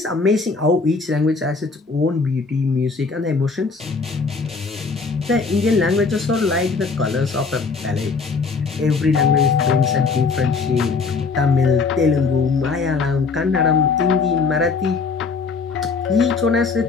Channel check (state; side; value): quieter; right; 4.6 dB